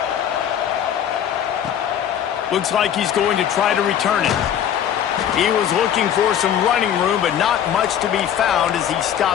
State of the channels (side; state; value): right; quieter; 9.6 dB